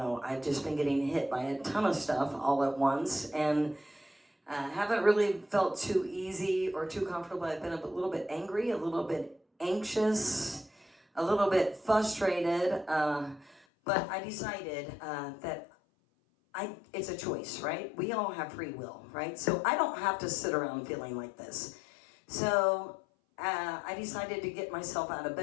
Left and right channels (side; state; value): right; drops out; at 13.7 s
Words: I've just been getting hit by a ton of stuff all at once, and haven't really felt too easy or too comfortable. I've been a little bit angry, a little bit anxious, a little bit frustrated, but I decided that it's a choice, right? We all have free will, right? So I don't have to sit around feeling like this. So I decided to get myself out of